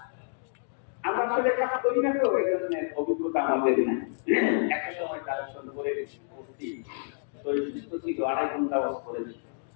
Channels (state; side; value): silent; right; digital silence